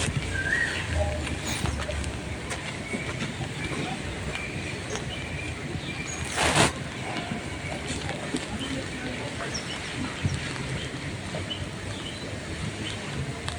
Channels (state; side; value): identical; both; correlation 1.00